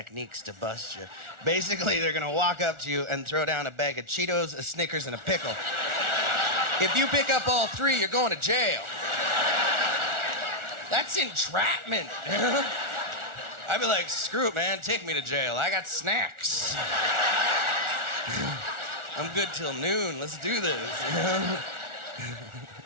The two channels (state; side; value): late; left; 1.4 ms